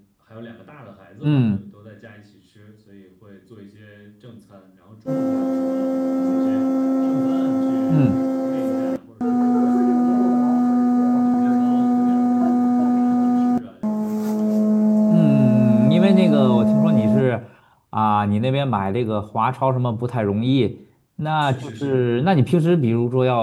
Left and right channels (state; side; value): identical; both; correlation 1.00